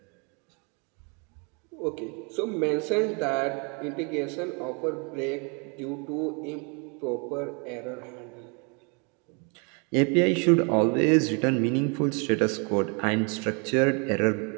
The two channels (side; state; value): left; quieter; 34.2 dB